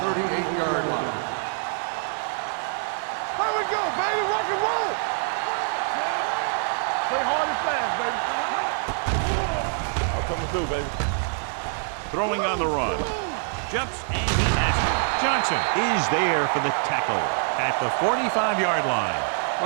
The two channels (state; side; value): silent; left; digital silence